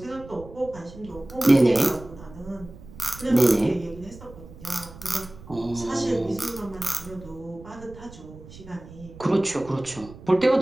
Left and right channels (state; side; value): noise; right; rumble, 18 dB below the sound